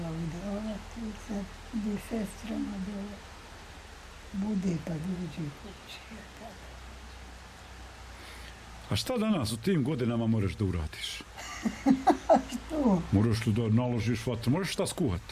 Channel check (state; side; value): identical; both; correlation 1.00